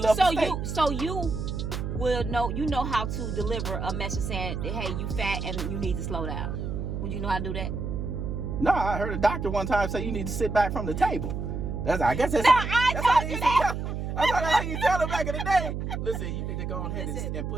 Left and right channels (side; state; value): right; noise; hum, 4 dB below the sound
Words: the steak? So you will know how to deliver a message saying, hey, you fat and you need to slow down. Would you know how to do that? No, I heard a doctor one time say you need to sit back from the table. I guess that's how you tell them back in the day. Listen, you need to go ahead and